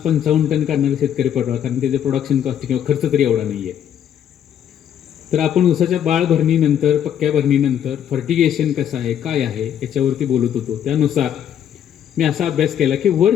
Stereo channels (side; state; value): right; quieter; 9.6 dB